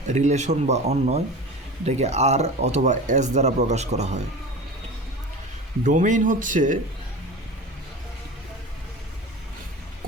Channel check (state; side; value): normal; both; correlation 0.33